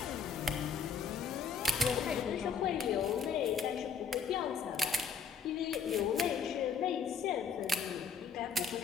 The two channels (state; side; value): quieter; right; 6.1 dB